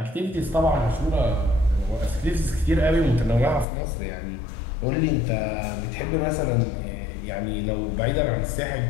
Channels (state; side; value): drops out; right; at 3.7 s